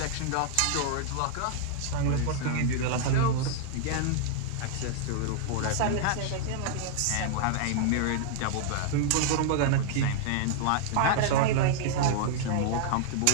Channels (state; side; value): different; both; correlation -0.01